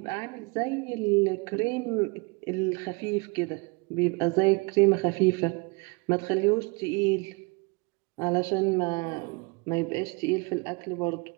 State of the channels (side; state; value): left; quieter; 29.6 dB